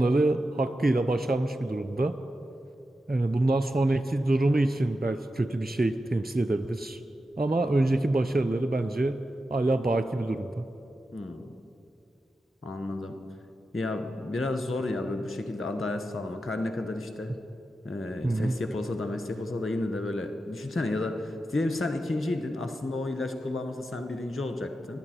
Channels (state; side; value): normal; both; correlation 0.90